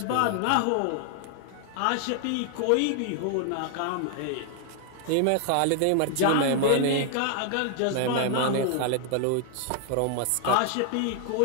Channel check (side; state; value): both; different; correlation 0.00